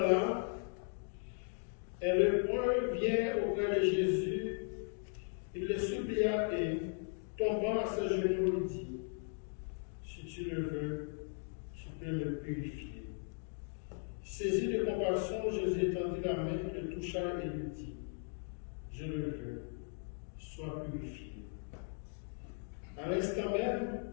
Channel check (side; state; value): right; silent; 53 dB below the other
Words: un lépreux vient auprès de Jésus. Il le supplia et, tombant à ses genoux, lui dit, si tu le veux, tu peux me purifier. Saisi de compassion, Jésus étendit la main, le toucha et lui dit, je le veux, sois purifié. À l'instant même,